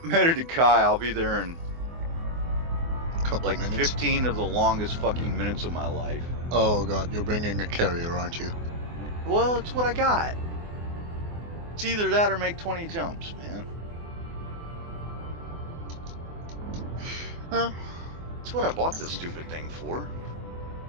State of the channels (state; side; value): late; left; 24 ms